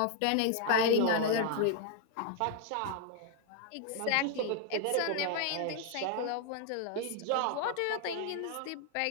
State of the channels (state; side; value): different; both; correlation 0.00